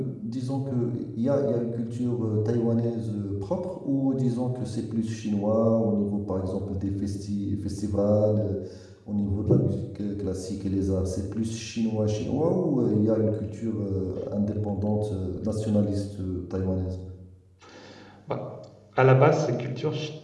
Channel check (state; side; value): identical; both; correlation 1.00